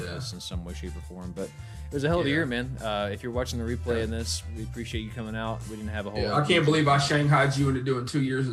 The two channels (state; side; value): identical; both; correlation 1.00